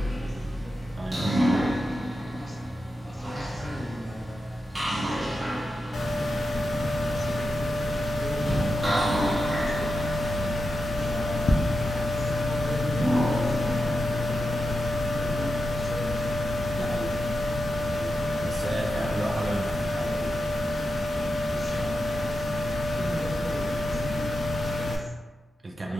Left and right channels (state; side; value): normal; both; correlation 0.89